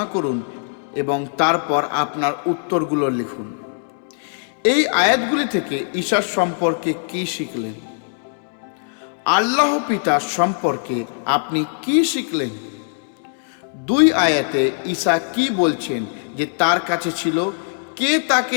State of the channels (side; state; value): right; silent; digital silence